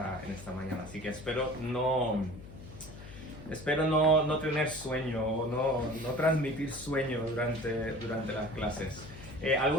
mañana. Así que espero no tener sueño o no transmitir sueño durante las clases.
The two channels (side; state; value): left; noise; hum, 15 dB below the sound